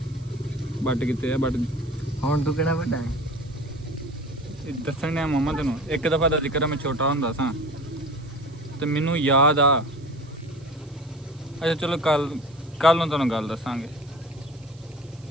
ਬੱਟ ਕਿਤੇ ਆ ਬੱਟ ਹੁਣ ਤੂੰ ਕਿਹੜਾ ਵੱਡਾ ਹੈ ਦੱਸਣ ਡਿਆ ਮਾਮਾ ਤੈਨੂੰ ਇੱਕ ਦਫਾ ਦਾ ਜ਼ਿਕਰ ਮੈਂ ਛੋਟਾ ਹੁੰਦਾ ਸਾਂ ਤੇ ਮੈਨੂੰ ਯਾਦ ਆ ਅੱਛਾ ਚਲੋ ਕੱਲ ਨੂੰ ਤੁਹਾਨੂੰ ਗੱਲ ਦੱਸਾਂਗੇ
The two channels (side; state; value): right; noise; hiss, 28 dB below the sound